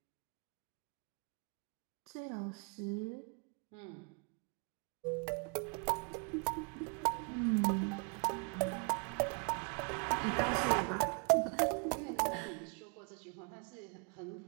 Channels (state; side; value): quieter; left; 36.1 dB